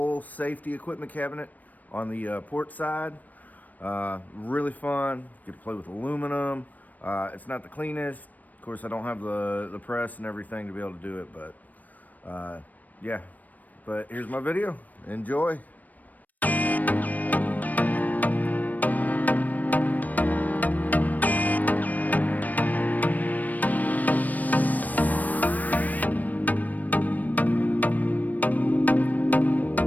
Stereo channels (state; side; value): late; right; 0.080 ms